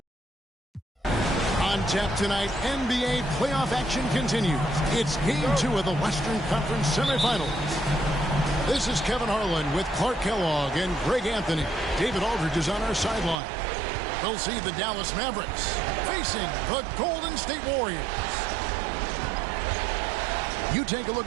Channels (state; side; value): drops out; left; at 13.4 s